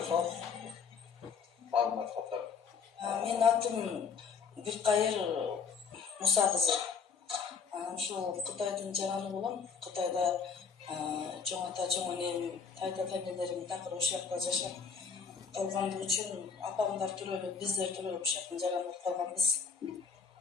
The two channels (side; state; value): right; quieter; 5.9 dB